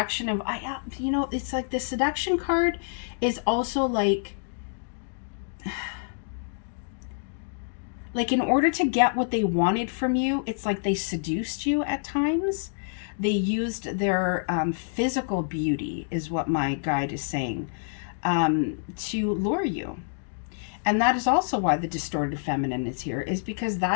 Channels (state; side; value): silent; right; digital silence